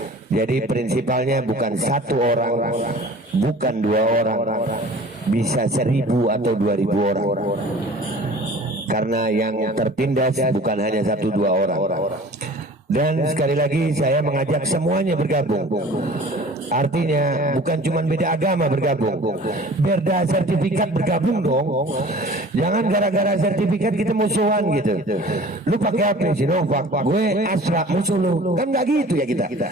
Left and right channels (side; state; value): both; normal; correlation 0.45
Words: Jadi prinsipalnya bukan satu orang, bukan dua orang, bisa 1.000 atau 2.000 orang. Karena yang tertindas bukan hanya 1-2 orang. Dan sekali lagi saya mengajak semuanya bergabung. Artinya bukan cuma beda agama bergabung, beda sertifikat bergabung dong. Jangan gara-gara sertifikat kita musuhan gitu. Lu pakai apa? Sinovac, gue Astra, musuh lu. Kan nggak gitu ya kita.